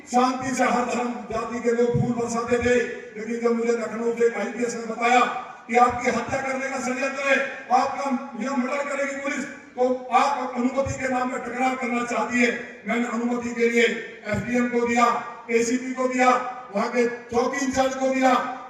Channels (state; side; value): identical; both; correlation 1.00